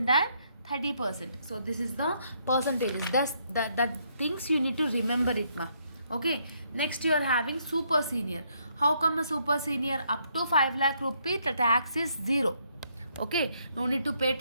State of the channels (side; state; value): both; inverted; correlation -0.72